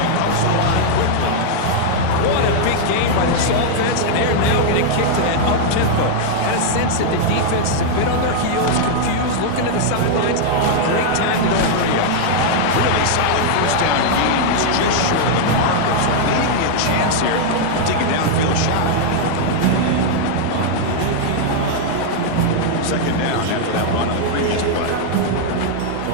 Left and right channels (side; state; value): both; different; correlation -0.01